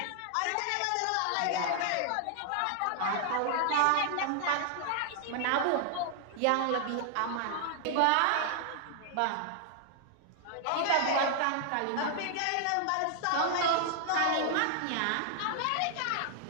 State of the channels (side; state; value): both; different; correlation 0.00